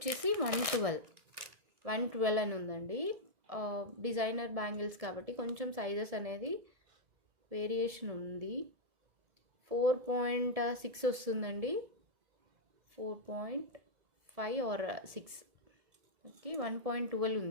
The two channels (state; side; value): late; left; 1.7 ms